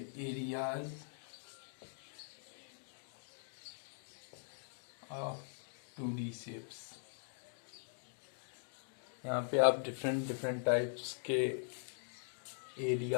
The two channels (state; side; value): silent; right; digital silence